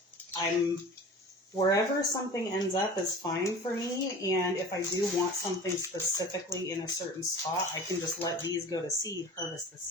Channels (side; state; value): both; normal; correlation 0.39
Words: wherever something ends up is fine for me, and if I do want something specifically in a certain spot, I can just let these go to seed, harvest the